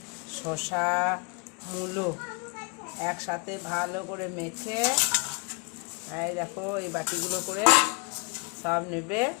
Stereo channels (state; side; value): quieter; right; 32.1 dB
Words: শসা, মূলো একসাথে ভালো করে মেখে এই দেখো এই বাটিগুলো করে সব নেবে,